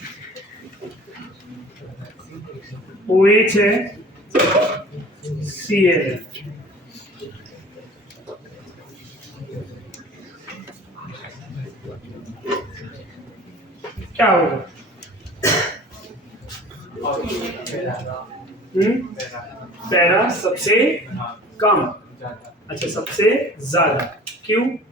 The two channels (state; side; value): normal; both; correlation 0.44